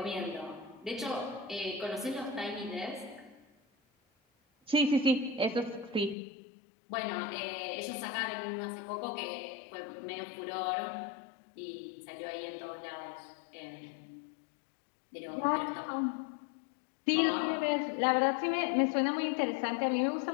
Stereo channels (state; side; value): drops out; right; at 6.2 s